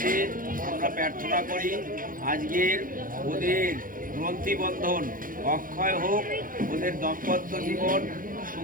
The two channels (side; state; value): left; late; 0.40 ms